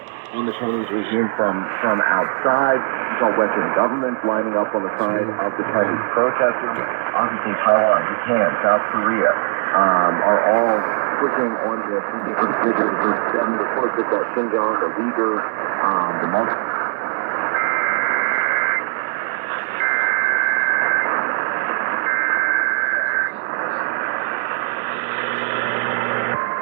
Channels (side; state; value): left; silent; 66 dB below the other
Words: On the Chinese regime from outside. You saw Western governments lining up on the side of the Chinese protesters. Obviously, Taiwan, Japan, South Korea are all pushing on this in different figures. There's 7 reports that Xinjiang, the Uyghurs, the Muslims.